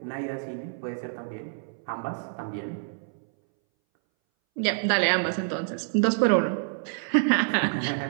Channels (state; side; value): silent; left; 59 dB below the other